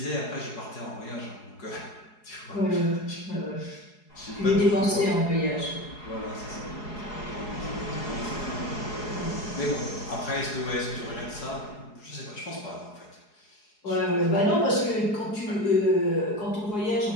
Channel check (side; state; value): right; late; 4.8 ms